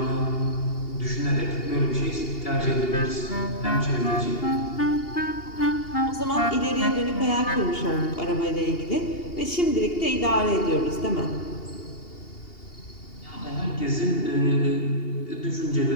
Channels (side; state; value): right; late; 2.8 ms